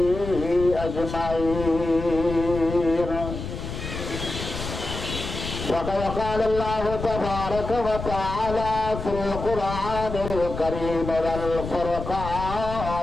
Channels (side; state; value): left; noise; rumble, 7 dB below the sound